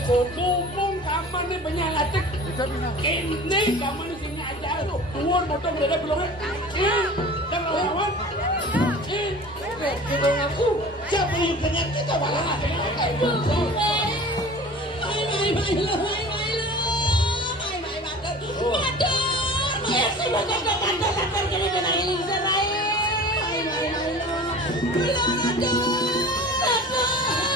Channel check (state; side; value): normal; both; correlation 0.40